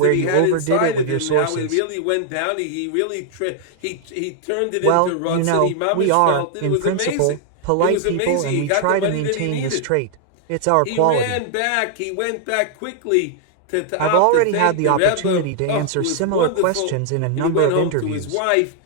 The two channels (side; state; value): both; different; correlation 0.00